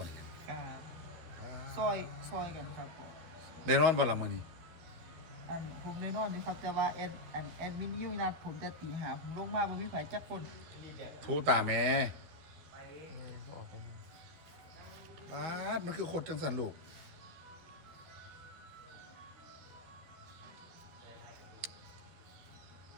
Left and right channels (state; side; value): late; left; 12 ms